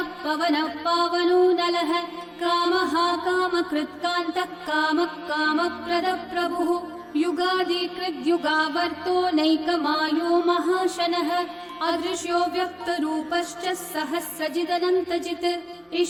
पवनः पावनो नलः कामः कामकृत्कान्तः कामः कामप्रदः प्रभुः युगादिकृद्युगावर्तो नैकमायो महाशनः अदृश्यो व्यक्तरूपश्च सहस्रजिदनन्तजित्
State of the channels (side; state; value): both; identical; correlation 1.00